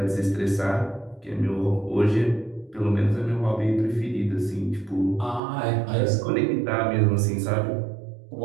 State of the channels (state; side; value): drops out; left; at 5.4 s